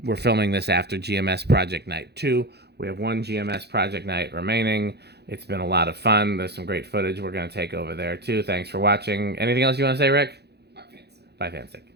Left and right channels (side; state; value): left; late; 0.48 ms